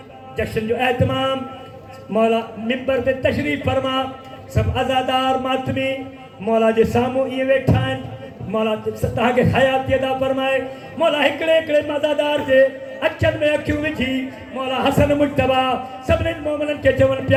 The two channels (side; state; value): both; identical; correlation 1.00